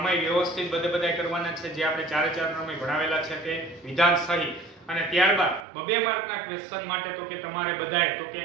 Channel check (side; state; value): left; drops out; at 5.7 s